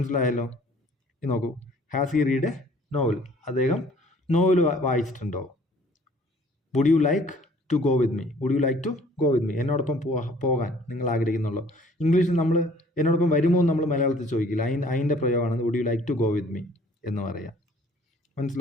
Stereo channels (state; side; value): normal; both; correlation 0.55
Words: ഇത് നോക്കൂ, has he read a novel, അദ്ദേഹം നോവൽ വായിച്ചിട്ടുണ്ടോ? Would you like to go with me, would you like to go with me, എന്നോടൊപ്പം പോകാൻ നിങ്ങൾ ആഗ്രഹിക്കുന്നുള്ളൂ. ഇംഗ്ലീഷിൽ നമ്മൾ എന്നോടൊപ്പം വരുമോ എന്ന് നമ്മൾ മലയാളത്തിൽ ചോദിക്കില്ല. അതിൻ്റെ പ്രയോഗമാണ് would you like to go with me എന്ന് പറയാം.